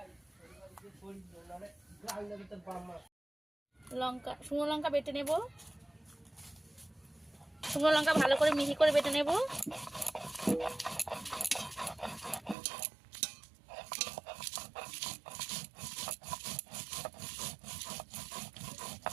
লঙ্কা, শুকনো লঙ্কা বেটে নেব। শুকনো লঙ্কা ভালো করে মিহি করে বেটে নেব।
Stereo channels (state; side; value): drops out; left; at 12.6 s